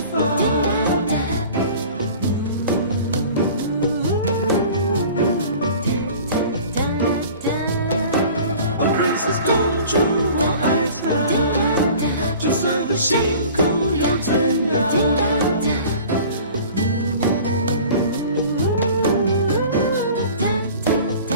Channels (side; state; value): both; inverted; correlation -0.44